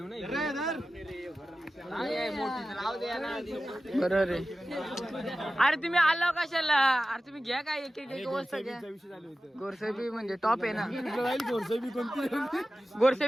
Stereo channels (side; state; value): both; normal; correlation 0.95